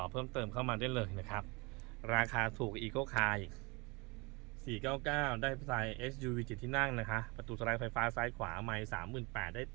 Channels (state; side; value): quieter; left; 27.3 dB